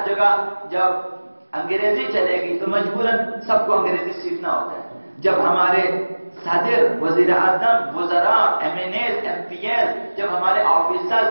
جگہ جب انگریزی چلے گی تو مجبوراً سب کو انگریزی سیکھنا ہوتا ہے. جب ہمارے صدر، وزیر اعظم، وزراء، M N As, M P L, جب ہمارے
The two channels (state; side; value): inverted; both; correlation -1.00